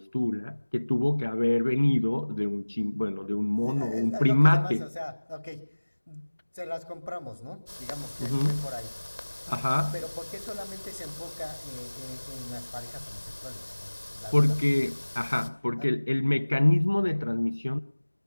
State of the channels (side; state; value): both; inverted; correlation -1.00